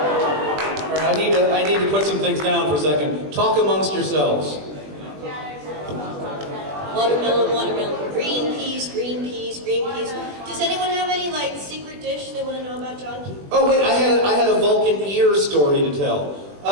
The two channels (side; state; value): left; late; 20 ms